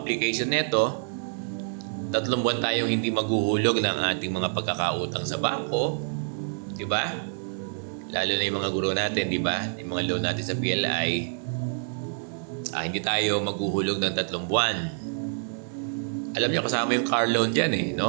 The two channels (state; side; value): silent; left; digital silence